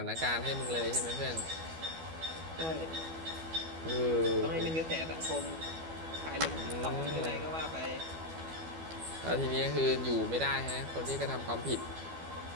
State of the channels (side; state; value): left; late; 12 ms